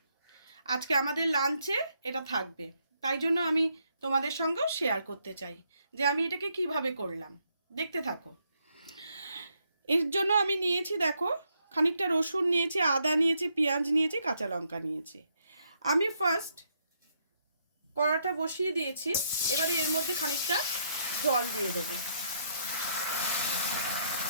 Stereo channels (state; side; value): inverted; both; correlation -0.74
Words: আজকে আমাদের লাঞ্চে এটা থাকবে, তাই জন্য আমি তোমাদের সঙ্গেও শেয়ার করতে চাই যে আমি এটাকে কিভাবে করলাম। দেখতে থাকো। এর জন্য আমি নিয়েছি দেখো খানিকটা রসুন নিয়েছি, আদা নিয়েছি, পেঁয়াজ নিয়েছি, কাঁচা লঙ্কা নিয়েছি। আমি ফার্স্ট কড়াটা বসিয়ে দিয়েছি, এবারে এর মধ্যে খানিকটা জল দিয়ে দেবো,